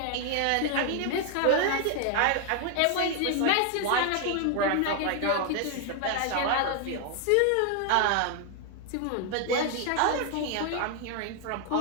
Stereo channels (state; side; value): different; both; correlation 0.00